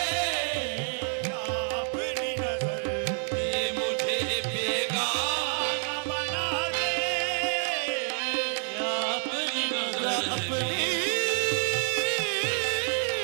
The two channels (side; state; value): left; silent; 59 dB below the other